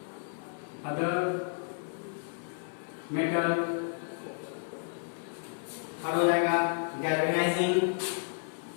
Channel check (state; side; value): silent; right; 56 dB below the other